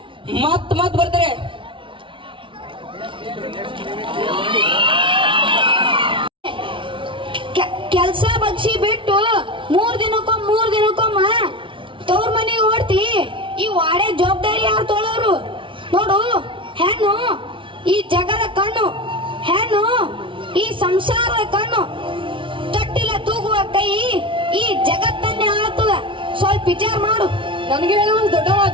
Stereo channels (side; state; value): left; late; 0.25 ms